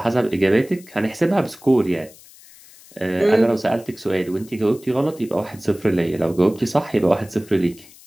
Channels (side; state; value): left; noise; hiss, 23 dB below the sound